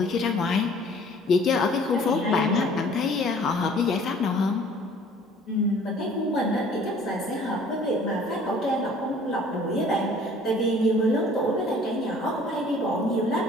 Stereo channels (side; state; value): both; normal; correlation 0.52